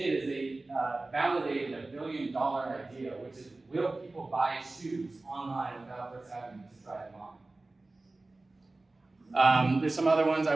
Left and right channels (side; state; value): left; quieter; 3.1 dB